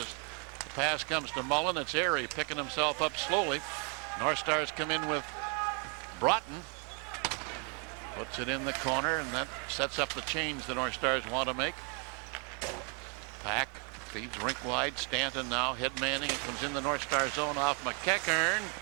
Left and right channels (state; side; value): quieter; left; 37.6 dB